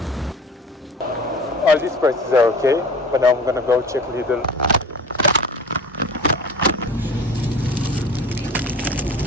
All these prices are okay, but now I'm gonna go check Lidl.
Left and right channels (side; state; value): both; normal; correlation 0.40